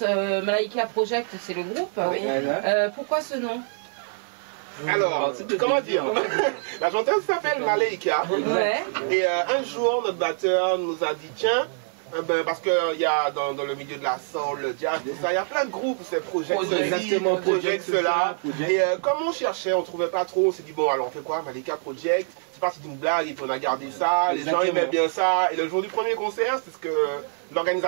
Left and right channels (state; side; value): silent; left; 62 dB below the other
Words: Malaika Project, c'est le groupe. Oui. Pourquoi ce nom? Alors, comment dire? La chanteuse s'appelle Malaika. Ouais. Et un jour, notre batteur nous a dit, tiens, parce qu'il y a dans le milieu de la soul, le jazz, tout ça, il y a plein de groupes, c'est Project cela. Et comme on cherchait, on trouvait pas trop, on s'est dit, bon, alors on fait quoi? Malaika Project. C'est parti d'une blague et puis on a gardé ça, les gens aimaient bien ça. Et le jour du premier concert, c'est ce que